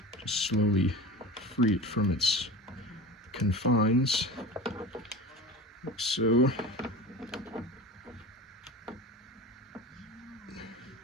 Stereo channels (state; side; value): normal; both; correlation 0.34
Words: Just slowly free it from its confines, like so.